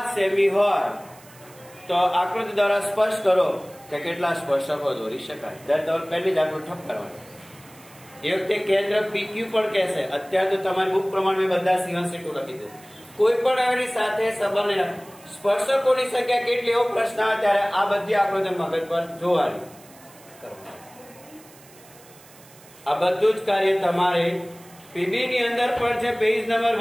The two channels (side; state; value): right; noise; hiss, 24 dB below the sound